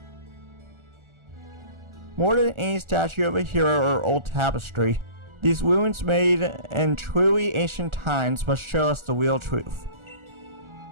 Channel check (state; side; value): late; left; 1.4 ms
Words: More than any statue of a hero or old tapestry, these ruins made in truly ancient times must show us the real truth.